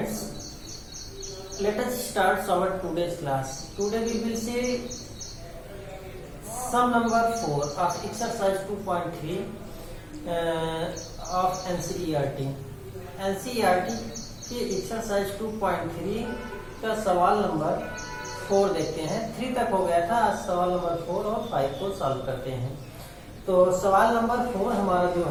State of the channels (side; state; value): both; identical; correlation 1.00